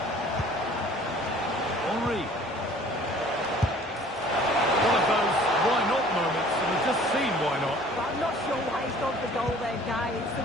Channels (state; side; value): normal; both; correlation 0.51